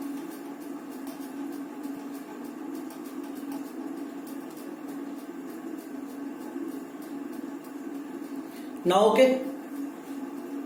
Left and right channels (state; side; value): identical; both; correlation 1.00